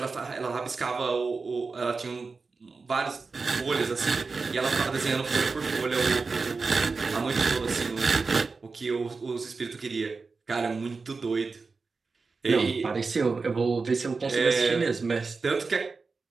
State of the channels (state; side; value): quieter; left; 4.3 dB